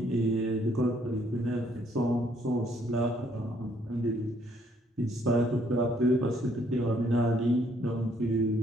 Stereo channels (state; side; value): normal; both; correlation 0.67